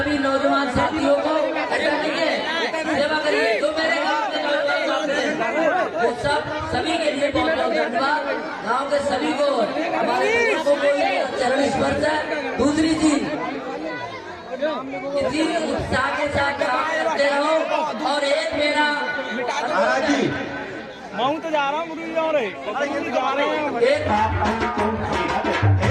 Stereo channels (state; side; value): identical; both; correlation 1.00